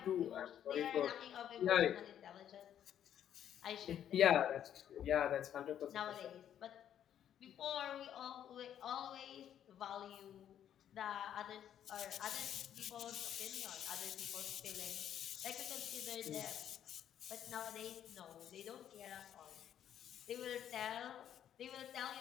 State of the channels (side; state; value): right; quieter; 10.1 dB